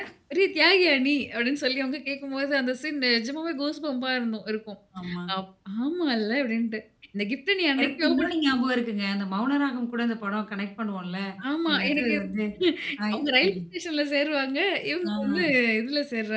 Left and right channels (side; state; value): both; identical; correlation 1.00